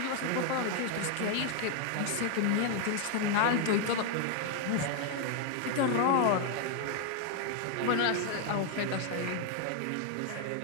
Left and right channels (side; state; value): both; different; correlation 0.01